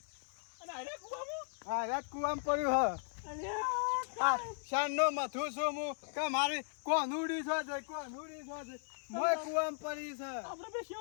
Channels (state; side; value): silent; right; digital silence